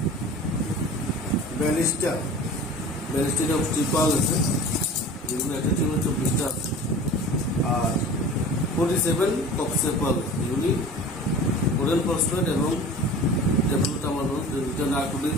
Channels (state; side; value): normal; both; correlation 0.39